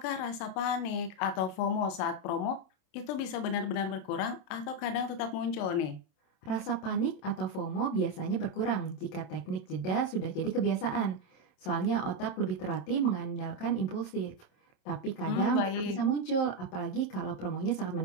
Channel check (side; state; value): right; late; 27 ms